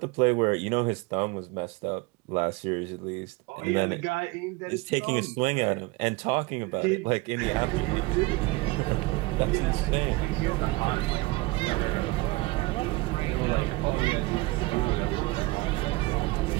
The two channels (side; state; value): left; quieter; 22.3 dB